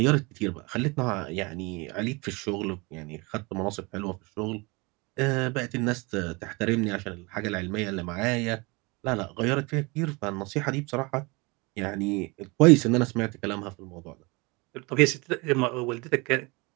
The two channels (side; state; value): left; quieter; 26.8 dB